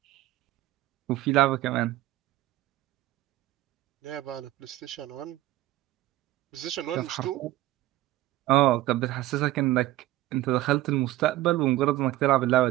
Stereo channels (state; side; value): quieter; left; 15.8 dB